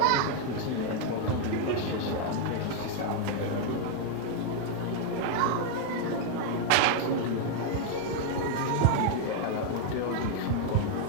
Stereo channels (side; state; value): both; different; correlation 0.00